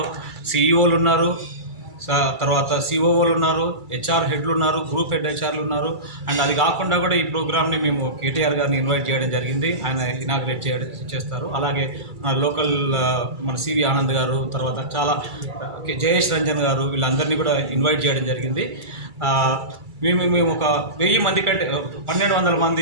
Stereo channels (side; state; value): left; late; 2.3 ms